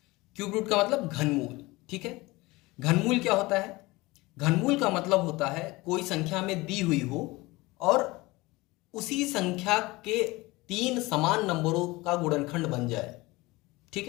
क्यूब रूट का मतलब घनमूल। ठीक है, घनमूल क्या होता है? घनमूल का मतलब होता है कोई संख्या में दी हुई हो और उसी संख्या के तीन समान नंबरों का गुणनखंड बन जाए। ठीक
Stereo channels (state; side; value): quieter; right; 21.7 dB